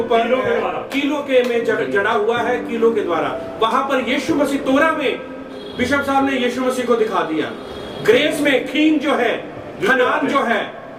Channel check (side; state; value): both; identical; correlation 1.00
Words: कीलों के द्वारा। कीलों के में जड़ा हुआ है, कीलों के द्वारा। वहां पर यीशु मसीह, तोरा में बिशप साहब ने यीशु मसीह को दिखा दिया। ग्रेस में खीन जो है, हनान जो है,